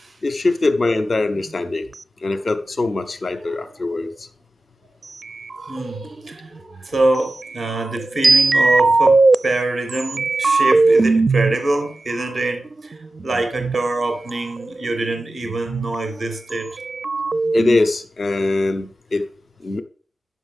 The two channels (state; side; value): normal; both; correlation 0.94